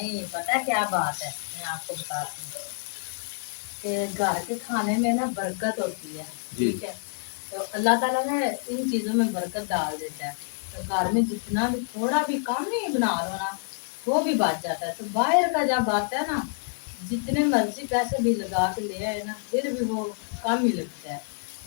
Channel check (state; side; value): silent; right; digital silence